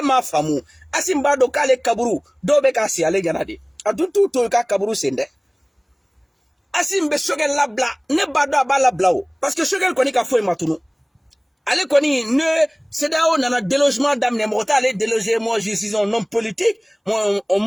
m'a faamu Assimi b'a dɔn k'ale kaburu dɔw bɛ k'a si ale ɲɛna de a dun t'u to i ka kaburu sen dɛ Assimi bɛ Choguel labila ne b'a dɔn a b'a labila o parce que Choguel kɔni ka foyi ma tunu ale kɔni ne CEDEAO nana délogement daminɛ mɔgɔ t'ale déloger moi je suis un homme politique moi on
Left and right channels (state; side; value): identical; both; correlation 1.00